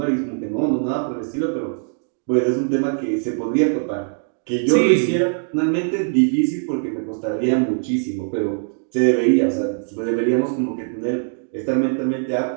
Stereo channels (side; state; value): left; silent; digital silence